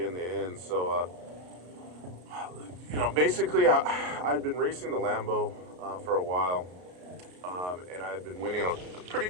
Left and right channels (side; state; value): left; late; 33 ms